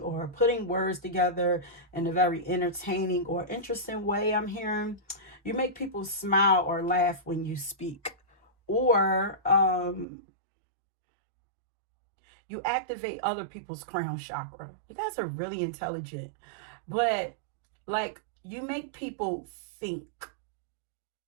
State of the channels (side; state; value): left; drops out; at 10.1 s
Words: or putting words together in a very entertaining or interesting way, I'm hearing. You make people smile or laugh when you speak. Or you activate other people's crown chakra. You guys are really intelligent. But, like, you make people think.